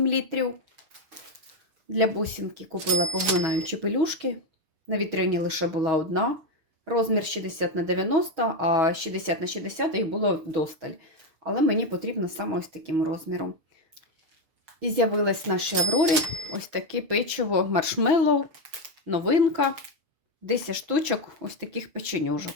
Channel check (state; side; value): late; left; 6.6 ms